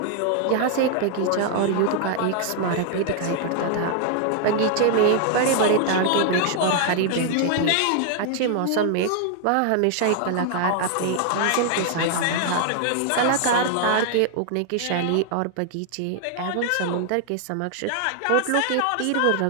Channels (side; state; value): both; different; correlation 0.00